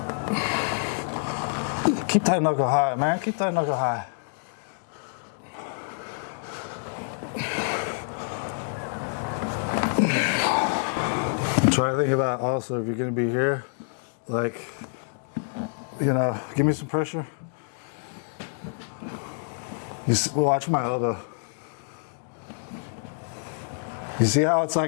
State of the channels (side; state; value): right; silent; digital silence